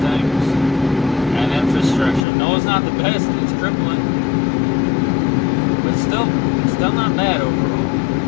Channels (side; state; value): right; drops out; at 2.2 s